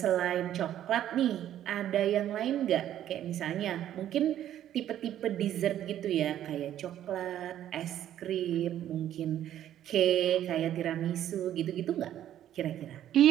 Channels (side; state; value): left; quieter; 11.5 dB